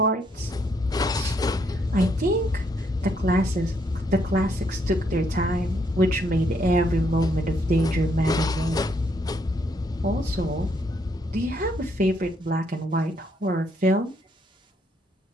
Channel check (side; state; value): both; normal; correlation 0.72